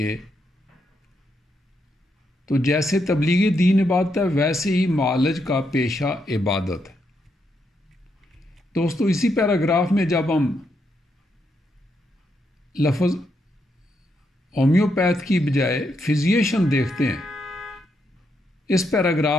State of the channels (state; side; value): normal; both; correlation 0.80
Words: تو جیسے تبلیغ دین عبادت ہے، ویسے ہی معالج کا پیشہ عبادت ہے۔ دوستو، اسی پیراگراف میں جب ہم لفظ ہومیوپیتھ کی بجائے فزیشین دیکھتے ہیں، اس